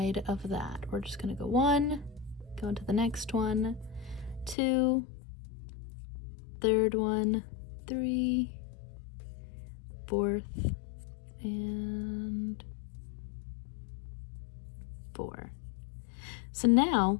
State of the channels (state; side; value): drops out; right; at 4.5 s